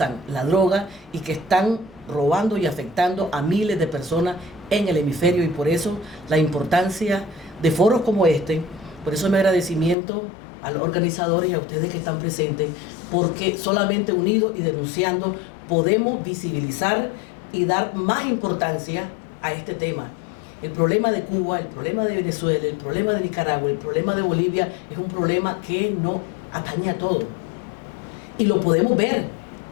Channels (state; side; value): drops out; right; at 10.0 s